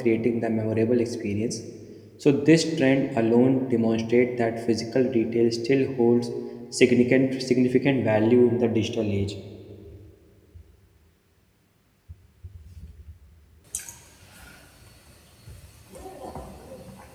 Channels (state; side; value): identical; both; correlation 1.00